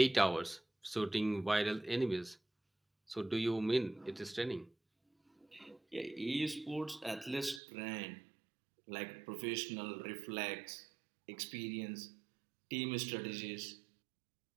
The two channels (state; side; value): drops out; left; at 7.6 s